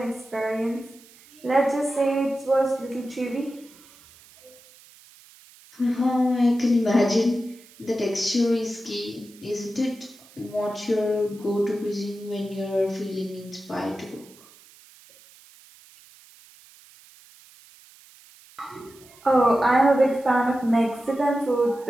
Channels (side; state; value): right; noise; hiss, 24 dB below the sound